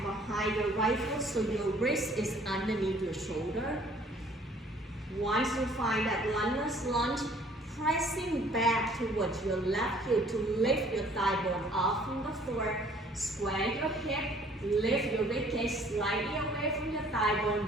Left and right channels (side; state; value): both; normal; correlation 0.57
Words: behind your right foot so your wrist is underneath your shoulder. Once you find that lungeless lunge, pressing back towards your left heel to lift your thigh bone off from the floor. Square your hip, lift your ribcage slightly away from your thigh bone